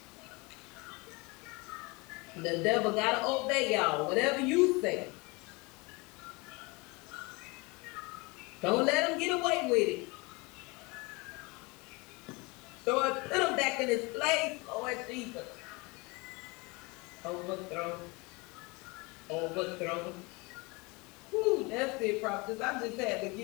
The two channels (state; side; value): quieter; right; 26.5 dB